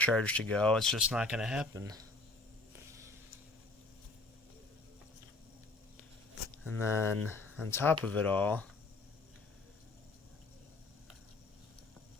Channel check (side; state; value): right; quieter; 3.2 dB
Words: to go, it's just not going to happen. And then on top of it all,